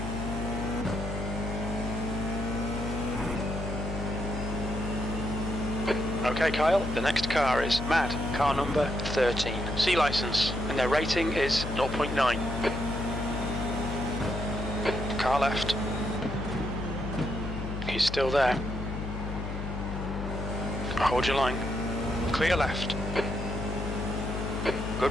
Okay, Kyle, the next car is Mad, car number 13. C license, and their rating is 0.9. Car left. He's still there. Hold your line. Clear left.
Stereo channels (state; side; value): noise; left; hum, 5 dB below the sound